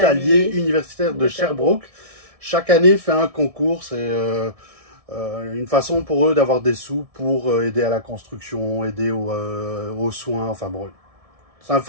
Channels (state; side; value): late; left; 1.6 ms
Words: universitaire de Sherbrooke. Chaque année fait un concours, c'est une façon pour eux d'avoir des sous pour aider à la construction, aider aux soins, enfin bon. C'est un